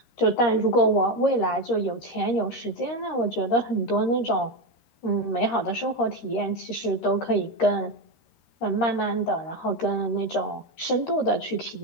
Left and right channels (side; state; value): right; late; 13 ms